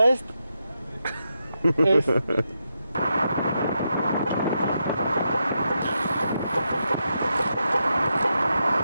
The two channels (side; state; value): both; inverted; correlation -0.85